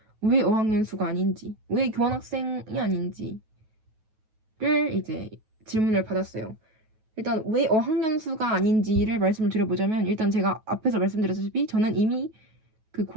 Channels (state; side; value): late; left; 9.2 ms